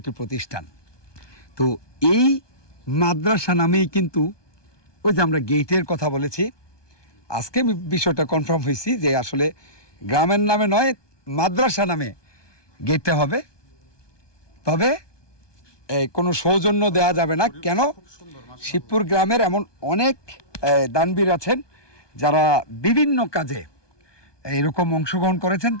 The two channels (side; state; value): right; late; 1.2 ms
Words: প্রতিষ্ঠান। তো এই মাদ্রাসা নামেই কিন্তু ওই যে আমরা গেটের কথা বলেছি, আজকে আমি বিষয়টা কনফার্ম হয়েছি যে আসলে গ্রামের নামে নয়, মাদ্রাসা নামে গেটটা হবে। তবে কোনো সৌজন্য দেওয়া যাবে না। কেন? শিবপুর গ্রামের এমন অনেক দানবীর আছেন যারা বিভিন্ন কাজে এরকম অংশগ্রহণ করেছেন,